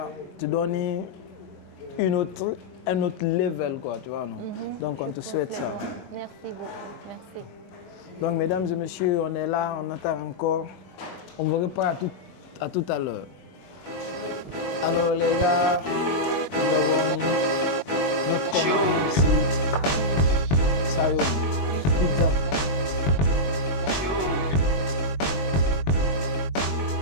te donner un autre level, quoi, tu vois, non? Donc, on te souhaite ça. Merci beaucoup, merci. Donc, mesdames et messieurs, on est là, on attend encore. On vous reprend à tout à l'heure. Alors, les gars, nous avons notre commande ici. Sayong.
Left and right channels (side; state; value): right; late; 21 ms